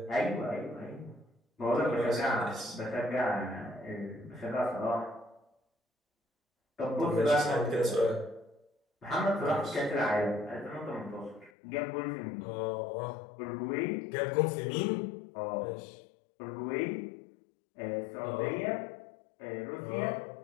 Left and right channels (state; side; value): drops out; right; at 11.5 s